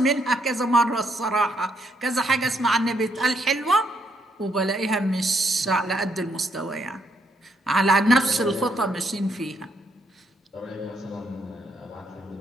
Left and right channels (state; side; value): normal; both; correlation 0.74